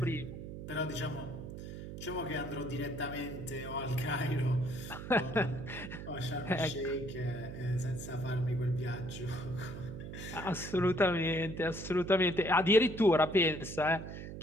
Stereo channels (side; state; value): right; noise; hum, 9 dB below the sound